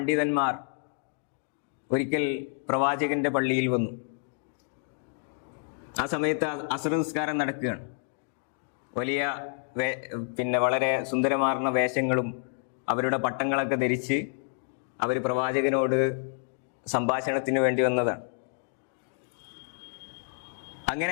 ഒരിക്കൽ പ്രവാചകന്റെ പള്ളിയിൽ വന്നു. ആ സമയത്ത് അസ്ർ നിസ്കാരം നടക്കുകയാണ്. വലിയ വളരെ സുന്ദരമാർന്ന വേഷങ്ങളും അവരുടെ പട്ടങ്ങളൊക്കെ ധരിച്ച് അവർ പ്രവാചകനോട് സംഭാഷണത്തിന് വേണ്ടി വന്നതാണ്.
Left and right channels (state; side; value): silent; right; digital silence